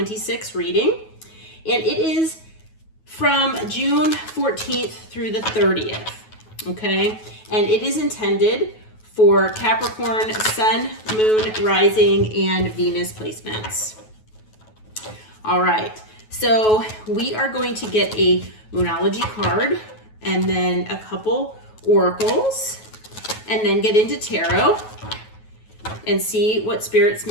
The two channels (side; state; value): right; late; 9.3 ms